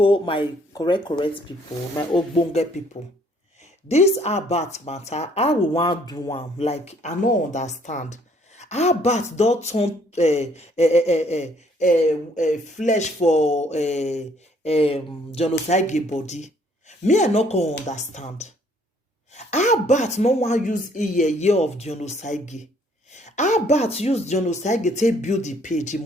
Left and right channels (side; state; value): both; normal; correlation 0.63